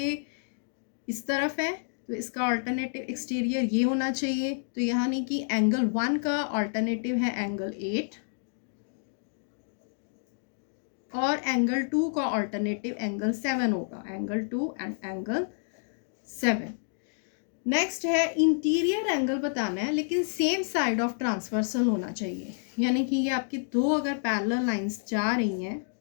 इस तरफ है तो इसका ऑल्टरनेटिव एक्सटीरियर ये होना चाहिए। तो यानी कि एंगल 1 का ऑल्टरनेटिव है एंगल 8 और एंगल 2 का ऑल्टरनेटिव एंगल 7 होगा, एंगल 2 एंड एंगल 7। नेक्स्ट है इंटीरियर एंगल बताना है लेकिन सेम साइड ऑफ ट्रांसवर्सल होना चाहिए, यानी कि ये आपकी दो अगर पैरेलल लाइंस जा रही हैं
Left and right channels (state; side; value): silent; right; digital silence